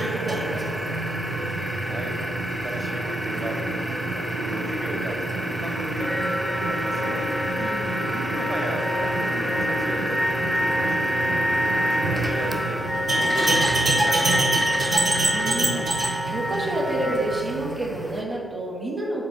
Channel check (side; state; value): both; normal; correlation 0.83